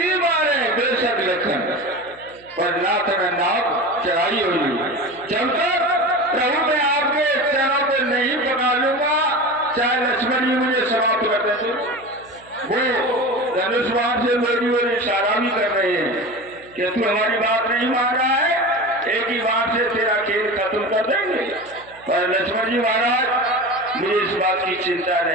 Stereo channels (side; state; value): right; noise; hum, 27 dB below the sound